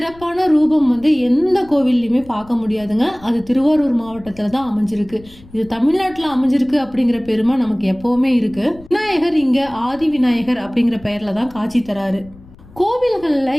ரூபம் எந்த கோவில்லையுமே பார்க்க முடியாதுங்க. அது திருவாரூர் மாவட்டத்துல தான் அமைஞ்சிருக்கு. இது தமிழ்நாட்டுல அமைஞ்சிருக்கு அப்படிங்கிற பெருமை நமக்கு எப்பவுமே இருக்கு. விநாயகர் இங்க ஆதி விநாயகர் அப்படிங்கிற பெயர்ல தான் காட்சி தராரு. கோவில்கள்ல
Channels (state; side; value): noise; left; rumble, 22 dB below the sound